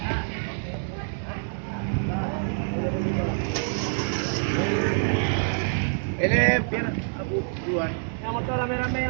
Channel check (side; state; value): left; silent; digital silence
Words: Ini biar aku duluan. Yang motor rame-rame